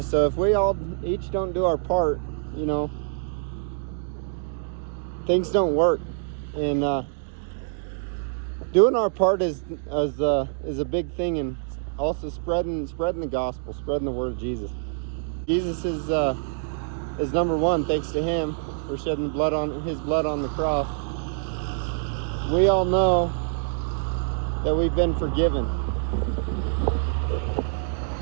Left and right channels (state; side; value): silent; left; digital silence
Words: So if we all each don't do our part, you know, things don't work. And doing our part is a big thing, and also spreading the gospel, spreading the word of Jesus. Jesus is number one, thanks to him for shedding his blood on the cross. We all know that we've been forgiven.